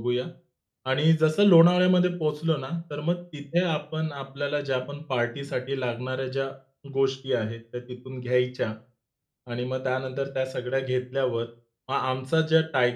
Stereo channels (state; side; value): identical; both; correlation 1.00